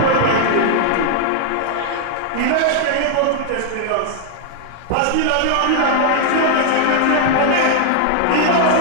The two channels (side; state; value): both; different; correlation 0.00